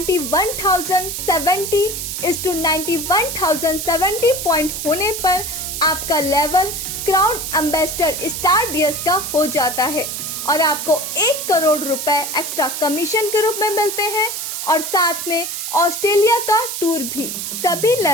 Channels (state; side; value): noise; right; hiss, 5 dB below the sound